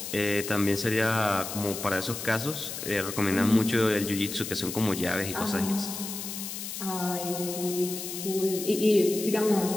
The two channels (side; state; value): left; noise; hiss, 7 dB below the sound